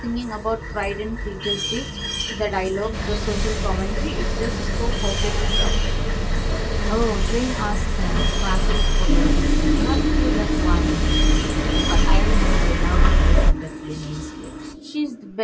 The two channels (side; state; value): both; identical; correlation 1.00